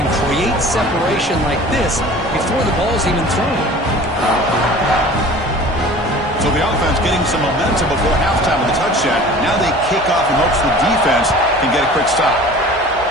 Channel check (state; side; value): normal; both; correlation 0.43